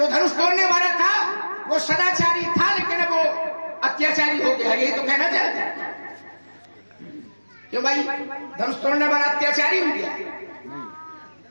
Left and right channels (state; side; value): inverted; both; correlation -1.00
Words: धनुष तोड़ने वाला था वो सदाचारी था, लेकिन वो अत्याचारी हो गया, यही तो कहना चाहते हैं। क्यों भाई, धनुष तोड़ने वाला अत्याचारी हो गया?